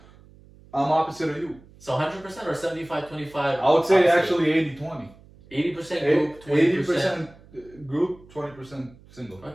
I'm opposite of you. So 100% or 75-25? I would say actually 80-20. 80% group, 20% group, 20% single.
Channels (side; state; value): right; noise; hum, 24 dB below the sound